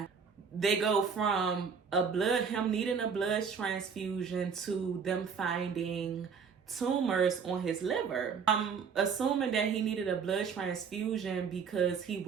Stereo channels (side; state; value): left; quieter; 6.1 dB